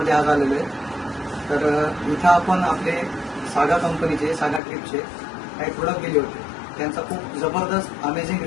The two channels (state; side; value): drops out; right; at 4.6 s